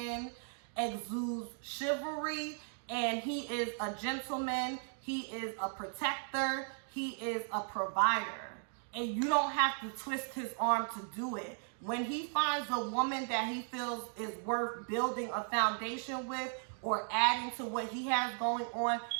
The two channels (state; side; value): silent; left; 53 dB below the other